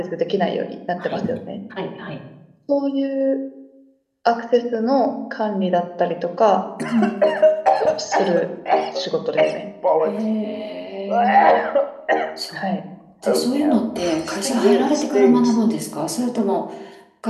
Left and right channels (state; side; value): identical; both; correlation 1.00